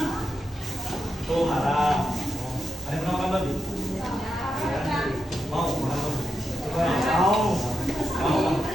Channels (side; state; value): both; normal; correlation 0.87